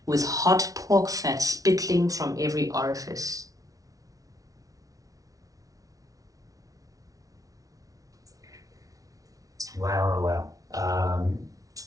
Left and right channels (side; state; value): left; late; 0.17 ms